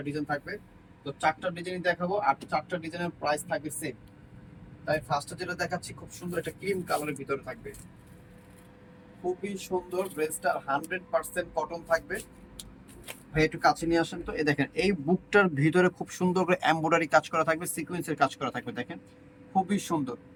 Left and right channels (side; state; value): both; identical; correlation 1.00